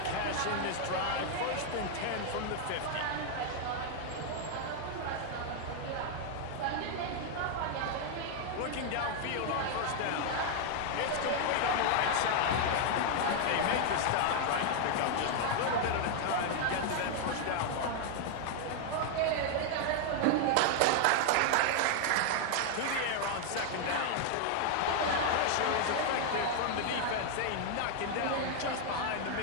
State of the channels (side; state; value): both; different; correlation 0.00